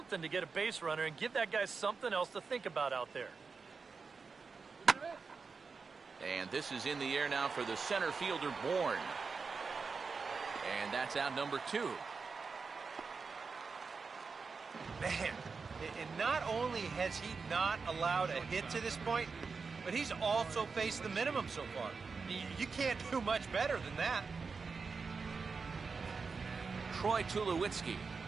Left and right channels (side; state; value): left; quieter; 4.9 dB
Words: to get a base runner and give that guy something else to think about out there. And this is in the air now for the center fielder, Bourne. And that's out number 2. Man, and not only has he not allowed a hit to this point, but he's also faced the minimum so far. You can't do much better than that. Troy Tulowitzki